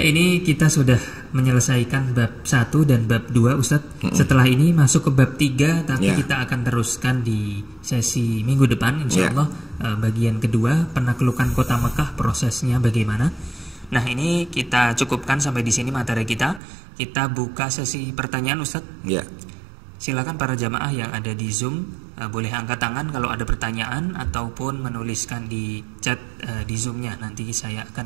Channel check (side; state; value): left; drops out; at 16.6 s